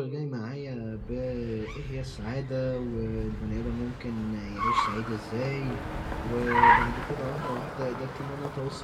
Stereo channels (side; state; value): both; identical; correlation 1.00